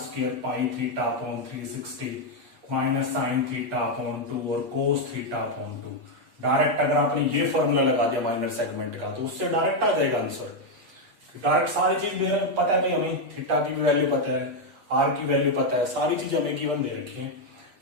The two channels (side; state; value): left; late; 8.3 ms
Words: pi theta upon 360 minus sine theta upon 2 और कोस थीटा अपॉन 2। डायरेक्ट अगर आपने ये फॉर्मूला लगा दिया माइनर सेगमेंट का तो उससे डायरेक्ट आ जाएगा आंसर। डायरेक्ट सारी चीज दे रहे, पता है भाई हमें, थीटा की भी वैल्यू पता है, आर की वैल्यू पता है, सारी चीज हमें गिवन दे रखी है।